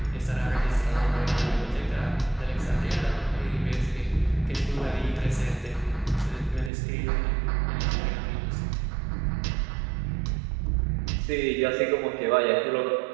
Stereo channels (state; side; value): drops out; left; at 6.7 s